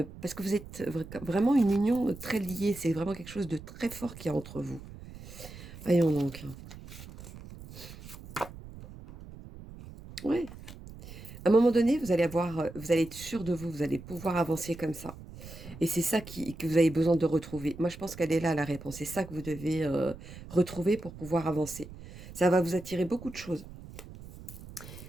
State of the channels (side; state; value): right; noise; rumble, 15 dB below the sound